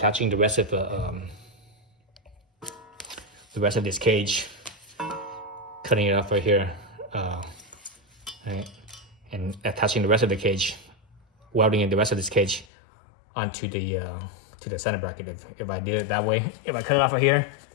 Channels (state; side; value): drops out; right; at 12.7 s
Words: the rest of this cage, cutting it off right here, right, and attaching the rest of the cage, welding in the rest of this cage onto the center bracket. If I did it that way, if I cut it off right here